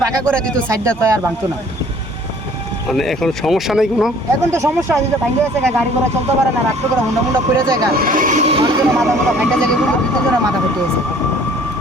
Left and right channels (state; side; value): normal; both; correlation 0.54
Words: পাকা করে দিত সাইডটা তো আর ভাঙতো না। মানে এখন সমস্যা নেই কোনো? এখন তো সমস্যা আছে, যে ভাঙে গেছে, গাড়ি ঘোড়া চলতে পারে না, রাত্রে করে হুন্ডা পড়ে যায়, মানুষজনের মাথা মোটা ভাঙা যায়, দুজনের মাথা ফেটে গেছে।